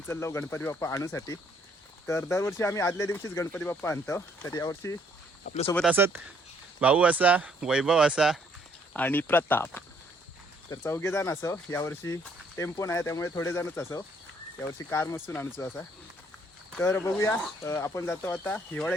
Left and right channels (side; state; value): both; normal; correlation 0.66